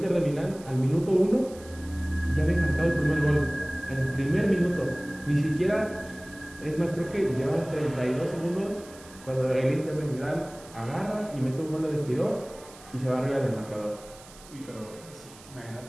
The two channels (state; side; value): noise; right; hiss, 21 dB below the sound